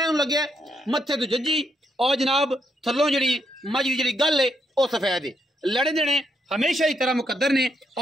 लगे मत्थे तो जज्जी और जनाब थलों जी मज की जी गल है वह सफेद है। लड़े देने हमेशा ही तरह मुकद्दर ने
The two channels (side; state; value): both; normal; correlation 0.78